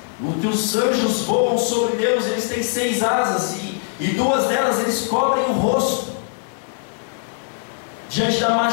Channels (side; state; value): right; silent; 59 dB below the other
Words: que os anjos voam sobre Deus. Eles têm 6 asas e 2 delas eles cobrem o rosto diante da